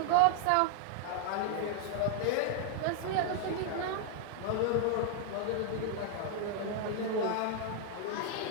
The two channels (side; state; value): both; different; correlation -0.01